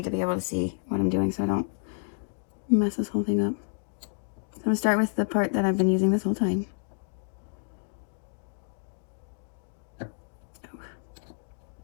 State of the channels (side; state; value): right; silent; 58 dB below the other